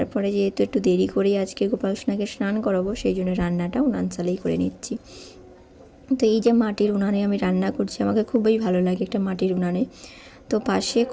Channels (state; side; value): identical; both; correlation 1.00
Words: যেহেতু একটু দেরি করেই আজকে গোপাল সোনাকে স্নান করাবো, সেই জন্য রান্নাটা উনান চালেই করে নিচ্ছি। তো এই যে মাটির উনানে আমি রান্না করছি, আমাকে খুবই ভালো লাগে একটা মাটির উনানে। তো পাশে